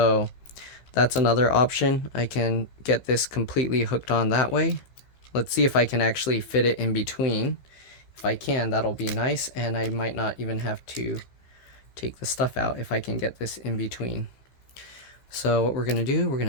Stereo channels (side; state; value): right; late; 15 ms